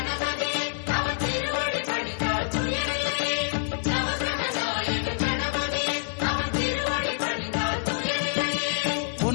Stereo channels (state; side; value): silent; right; digital silence